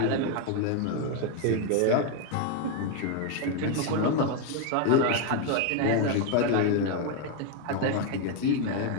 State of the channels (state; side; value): different; both; correlation 0.01